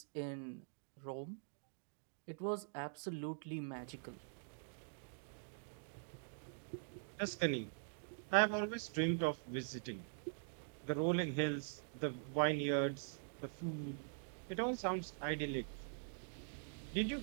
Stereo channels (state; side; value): silent; left; digital silence